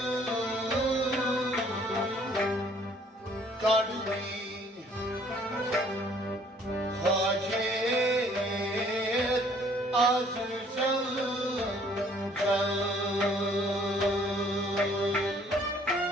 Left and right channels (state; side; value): normal; both; correlation 0.60